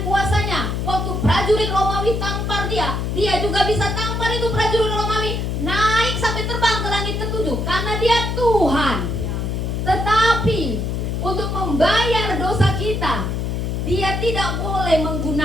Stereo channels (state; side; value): noise; left; hum, 1 dB below the sound